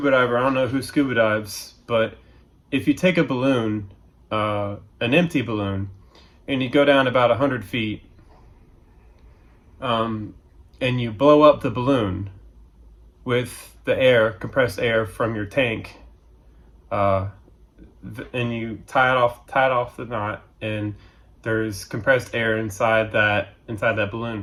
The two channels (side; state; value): both; identical; correlation 1.00